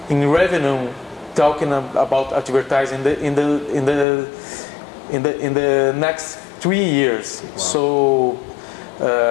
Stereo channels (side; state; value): right; drops out; at 4.0 s